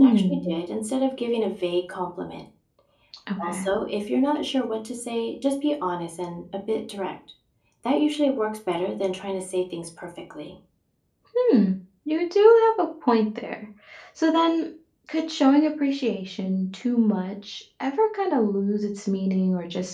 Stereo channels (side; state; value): both; identical; correlation 1.00